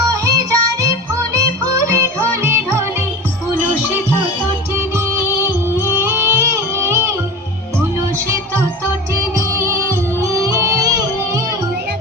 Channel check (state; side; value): normal; both; correlation 0.32